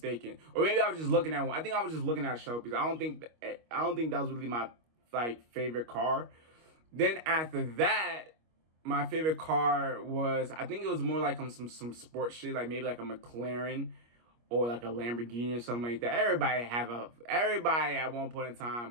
or maybe I was just looking at one. I think I was just looking at Shelby's. I don't think that was really my like favorite car. Then after that, my favorite car was, I think it was more like some sports shit, like maybe like a McLaren or like a Lamborghini or something like that. Everybody at one point in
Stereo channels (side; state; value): left; late; 25 ms